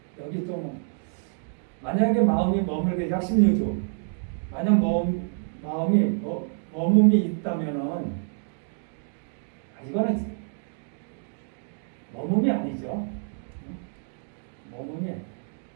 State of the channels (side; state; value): left; silent; 60 dB below the other